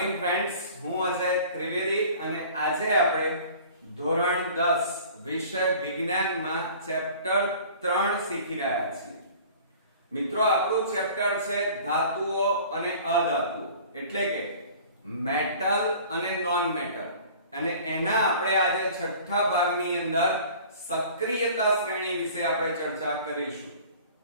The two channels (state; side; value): inverted; both; correlation -0.46